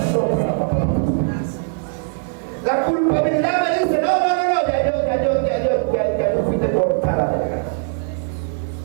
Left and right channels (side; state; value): left; silent; 63 dB below the other